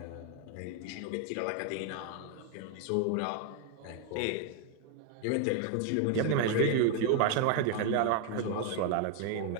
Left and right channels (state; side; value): different; both; correlation 0.00